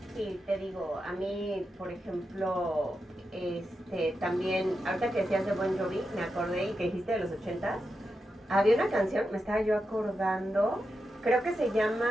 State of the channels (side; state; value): both; normal; correlation 0.88